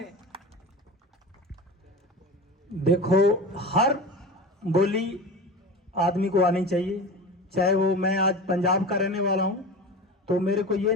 देखो, हर बोली आदमी को आनी चाहिए, चाहे वो, मैं आज पंजाब का रहने वाला हूं तो मेरे को ये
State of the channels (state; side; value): normal; both; correlation 0.31